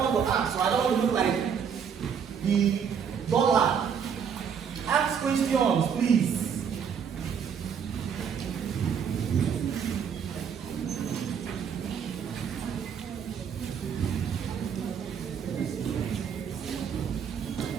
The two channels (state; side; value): quieter; left; 7.3 dB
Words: want to ask, so I don't want to look like the dollar. Ask questions, please.